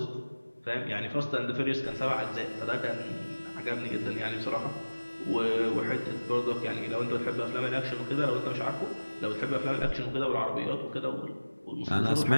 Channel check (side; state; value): both; inverted; correlation -1.00